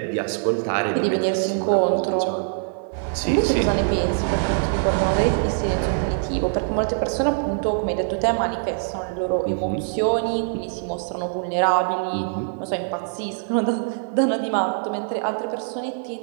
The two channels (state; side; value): silent; left; digital silence